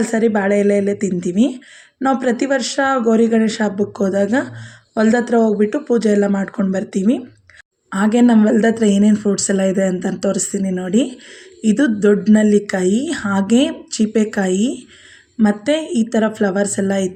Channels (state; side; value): identical; both; correlation 1.00